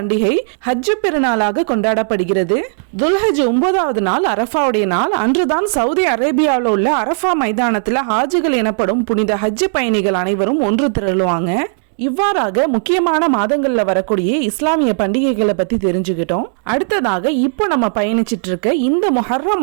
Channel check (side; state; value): left; silent; digital silence